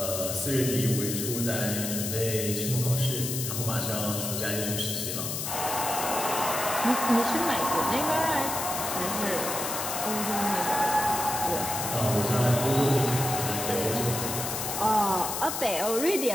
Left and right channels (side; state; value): left; noise; hiss, 3 dB below the sound